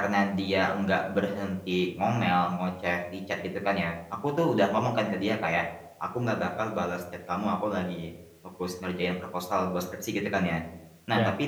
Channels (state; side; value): identical; both; correlation 1.00